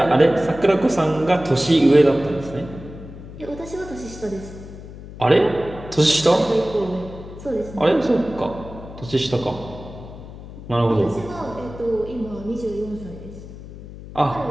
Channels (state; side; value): noise; left; hum, 14 dB below the sound